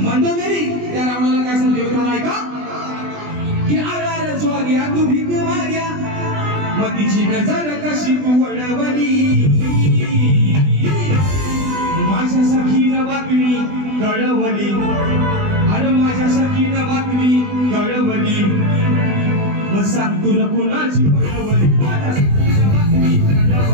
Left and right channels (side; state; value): left; late; 20 ms